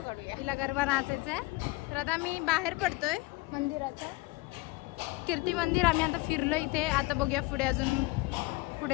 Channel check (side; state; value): right; quieter; 22.9 dB